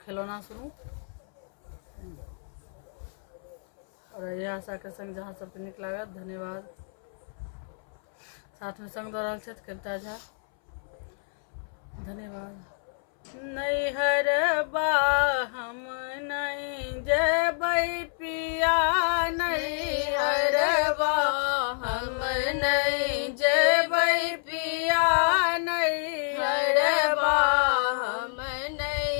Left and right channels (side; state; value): right; silent; 59 dB below the other